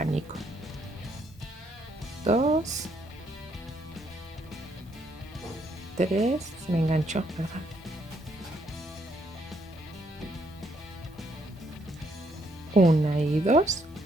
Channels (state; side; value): normal; both; correlation 0.72